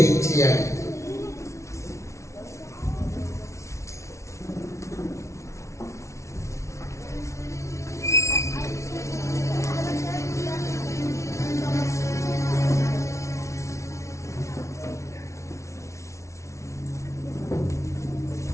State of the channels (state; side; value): late; right; 0.14 ms